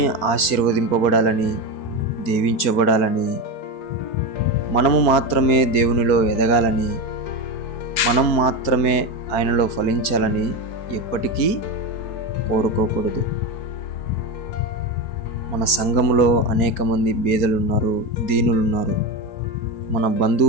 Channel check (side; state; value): right; late; 4.3 ms